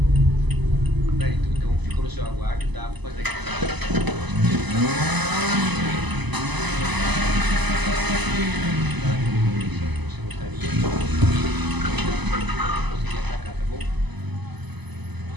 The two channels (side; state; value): left; late; 1.0 ms